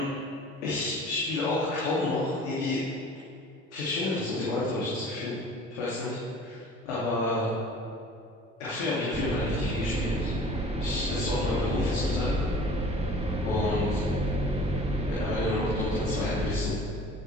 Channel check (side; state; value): both; normal; correlation 0.46